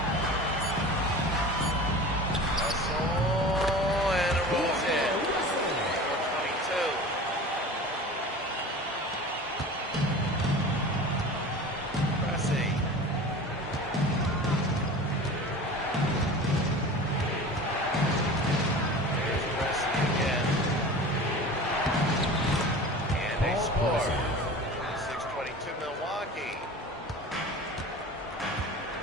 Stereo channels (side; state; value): both; normal; correlation 0.36